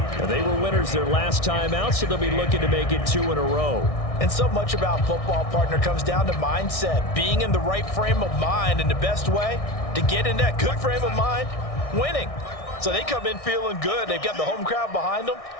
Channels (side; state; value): right; late; 1.6 ms